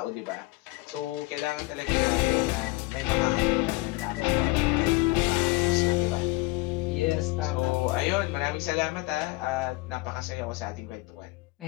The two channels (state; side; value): quieter; right; 23.0 dB